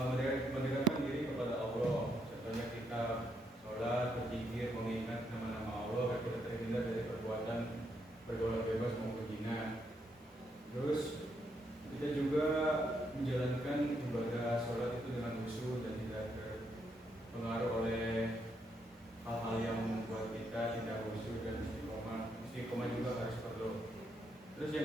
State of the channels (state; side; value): normal; both; correlation 0.77